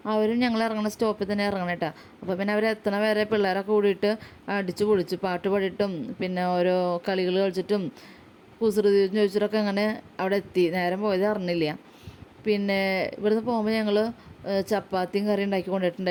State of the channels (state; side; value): identical; both; correlation 1.00